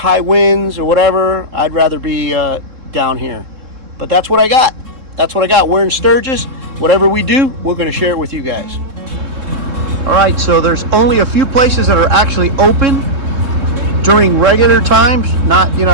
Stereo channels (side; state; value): left; late; 3.7 ms